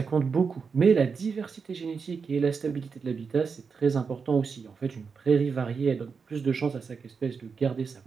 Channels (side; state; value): left; quieter; 5.5 dB